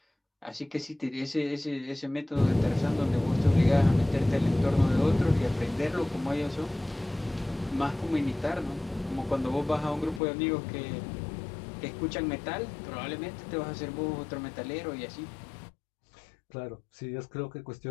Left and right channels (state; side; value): drops out; right; at 10.2 s